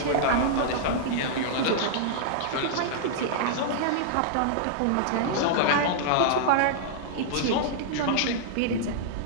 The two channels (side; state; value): both; different; correlation -0.01